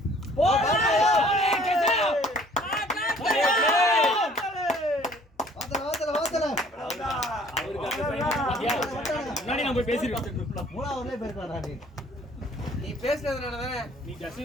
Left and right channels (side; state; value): both; normal; correlation 0.56